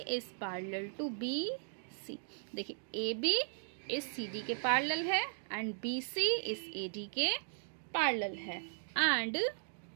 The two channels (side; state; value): left; silent; digital silence